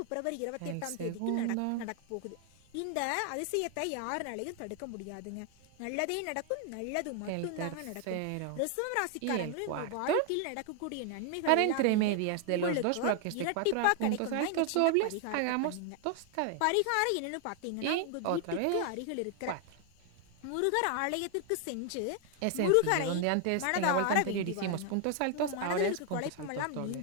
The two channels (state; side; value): different; both; correlation 0.00